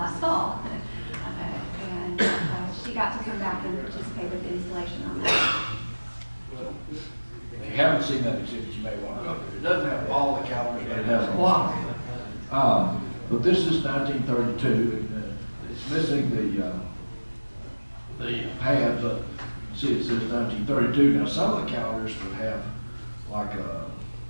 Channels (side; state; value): both; inverted; correlation -1.00